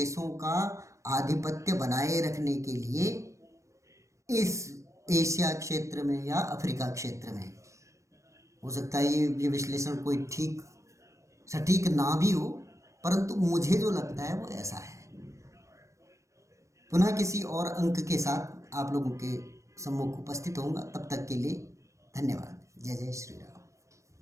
का आधिपत्य बनाए रखने के लिए इस एशिया क्षेत्र में या अफ्रीका क्षेत्र में। हो सकता है ये विश्लेषण कोई सटीक ना भी हो, परंतु मुझे जो लगता है वो ऐसा है। पुनः किसी और अंक के साथ आप लोगों के सम्मुख उपस्थित होऊंगा। तब तक के लिए धन्यवाद। जय जय श्री राम।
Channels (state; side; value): late; left; 0.15 ms